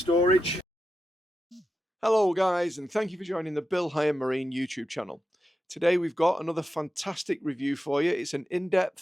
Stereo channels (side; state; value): both; normal; correlation 0.89